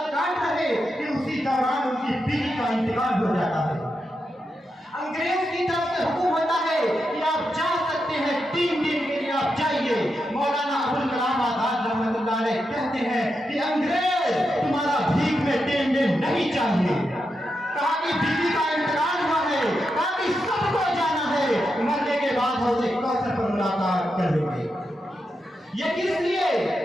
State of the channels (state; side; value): normal; both; correlation 0.86